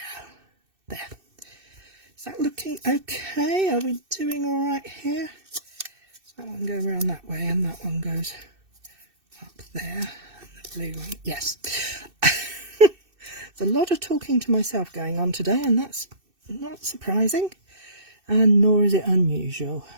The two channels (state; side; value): late; left; 2.6 ms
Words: there. Is that looking okay? Are we doing all right here? Does that one go around that way and that one goes up there? Blue one. Yes. There's a lot of talking to myself going on today, and that's not surprising, and nor is it unusual.